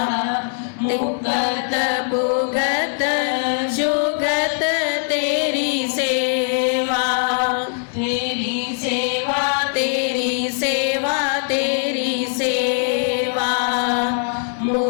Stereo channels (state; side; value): silent; right; 58 dB below the other